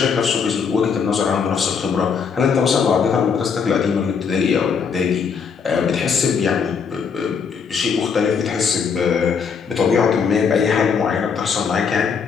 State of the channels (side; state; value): right; quieter; 6.1 dB